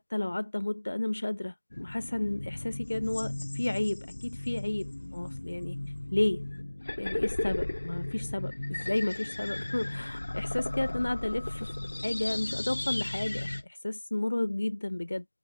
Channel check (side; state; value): both; inverted; correlation -1.00